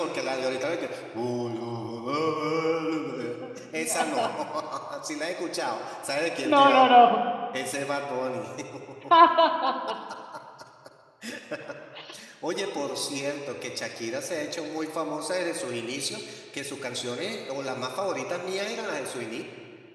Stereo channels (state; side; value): identical; both; correlation 1.00